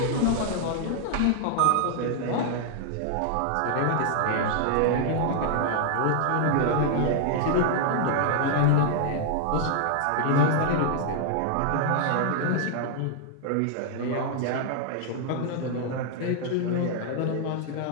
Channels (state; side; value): different; both; correlation 0.00